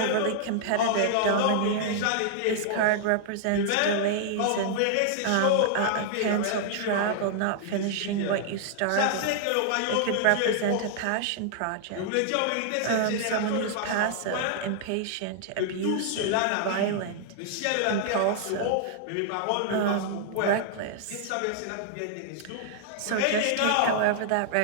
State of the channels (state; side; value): different; both; correlation -0.01